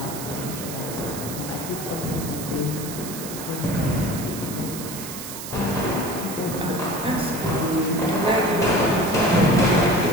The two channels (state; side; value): noise; right; hiss, 9 dB below the sound